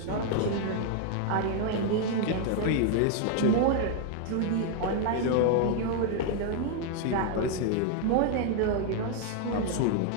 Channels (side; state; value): both; different; correlation 0.00